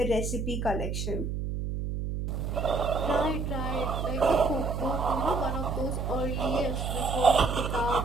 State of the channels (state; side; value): noise; right; hum, 3 dB below the sound